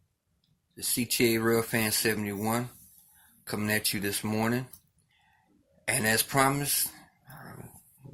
The CTA Railfan 71 coming at you this morning. And as promised, I'm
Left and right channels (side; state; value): both; identical; correlation 1.00